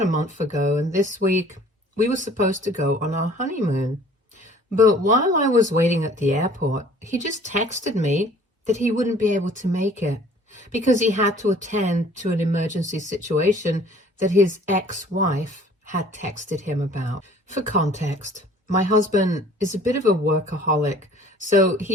a month ago, and this week we were supposed to go on our honeymoon. But while I was waiting at the airport, he just texted me that he wouldn't be able to make it because he had to attend to an emergency situation that his ex-wife had texted him about. For context, my husband is a bit of a workaholic, so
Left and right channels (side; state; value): both; normal; correlation 0.52